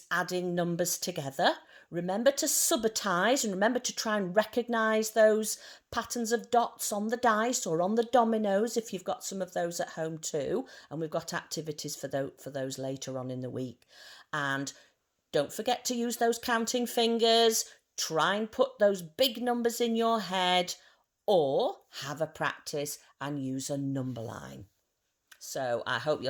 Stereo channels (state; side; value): identical; both; correlation 1.00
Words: adding numbers together. Remember to subitize and remember to try and recognise those patterns of dots on the dice or on the dominoes if you've got some of those at home too. And we've got activities for those later on in the week. And don't forget to use those counting fingers. Try and put those big numbers in your head or have a practice and use a number line. So I hope